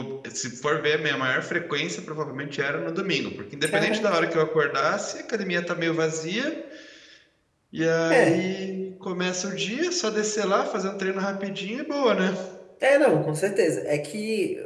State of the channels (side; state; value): both; identical; correlation 1.00